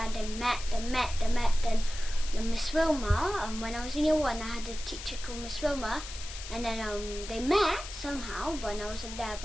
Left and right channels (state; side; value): noise; left; hiss, 11 dB below the sound